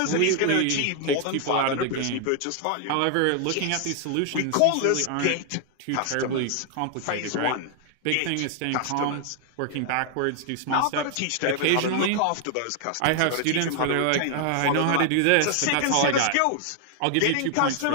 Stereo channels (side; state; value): both; different; correlation 0.00